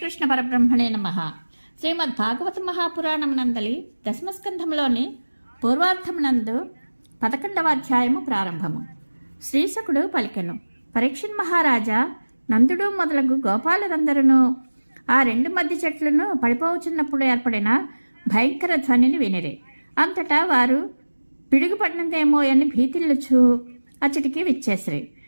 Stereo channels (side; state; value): both; inverted; correlation -1.00